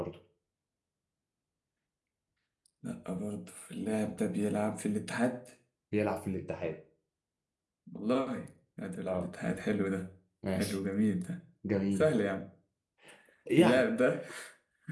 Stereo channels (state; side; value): identical; both; correlation 1.00